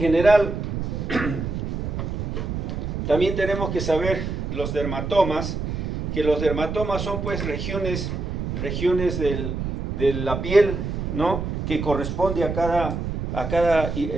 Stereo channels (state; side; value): noise; right; rumble, 3 dB below the sound